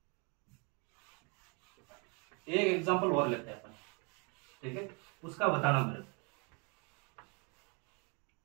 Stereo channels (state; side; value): quieter; left; 33.5 dB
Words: एक एग्जाम्पल और लेते हैं अपन, ठीक है, उसका बताना मेरे को।